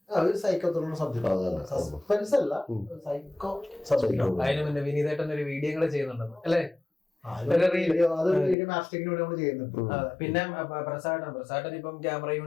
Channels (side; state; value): right; drops out; at 8.6 s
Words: ഒരു സൈക്കോ ത്രില്ലർ സബ്ജക്ട്, സസ്പെൻസ് അല്ല, സൈക്കോ സബ്ജക്ട്. അതിന് മുന്നേ വിനീതേട്ടൻ ഒരു വീഡിയോ ചെയ്യുന്നുണ്ടെന്ന് അല്ലേ? പിന്നെ പ്രസാദൻ ഇപ്പം ക്യാമറ